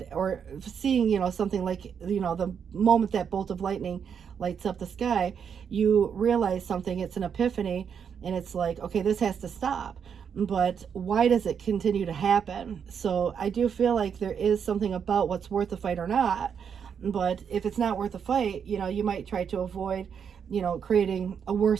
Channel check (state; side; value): quieter; left; 7.3 dB